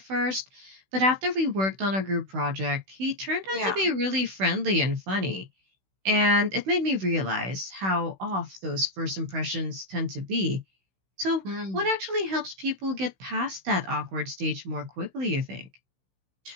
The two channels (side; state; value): left; late; 16 ms